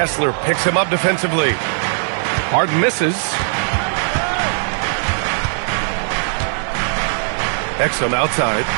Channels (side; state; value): left; silent; 67 dB below the other